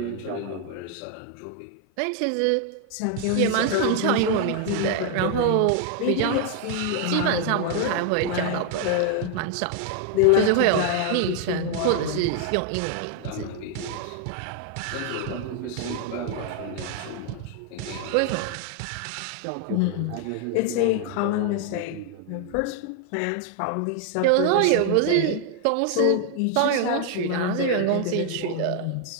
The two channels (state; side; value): different; both; correlation 0.00